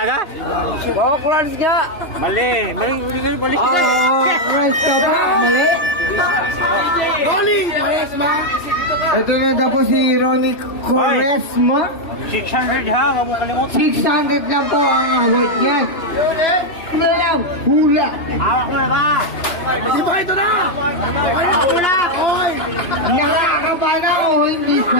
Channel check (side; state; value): right; late; 2.9 ms